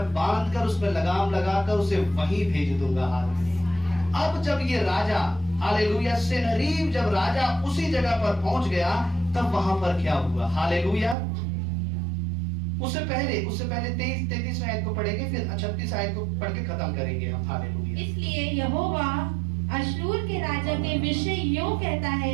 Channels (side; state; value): left; drops out; at 11.2 s